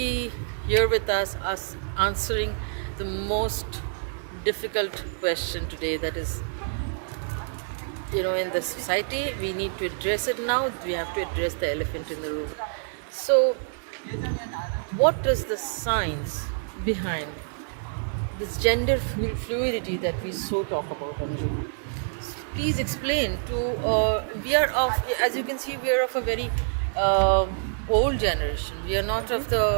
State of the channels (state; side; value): silent; left; digital silence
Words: here with us answering the most difficult question today, that is, in the society, we need to address it now. We have to address the elephant in the room. So, what is the science behind this gender fluidity that we so talk about? Please explain to. As you can see, we are of a very old generation. We are not of